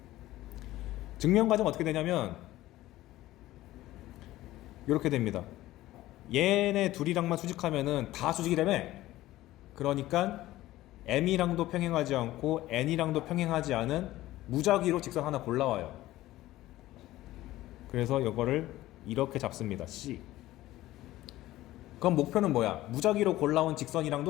증명 과정 어떻게 되냐면 이렇게 됩니다. 얘네 둘이랑만 수직하면은 다 수직이라며. 그러니까 M이랑도 평행하지 않고 N이랑도 평행하지 않은 무작위로 직선 하나 골라와요. 그래서 이거를 이렇게 잡습니다. C. 그럼 목표는 뭐야? 무작위로 골라온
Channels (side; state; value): right; quieter; 16.0 dB